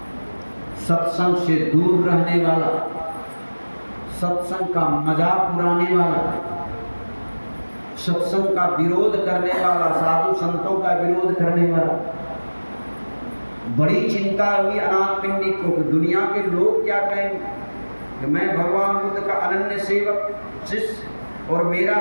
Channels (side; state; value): both; inverted; correlation -1.00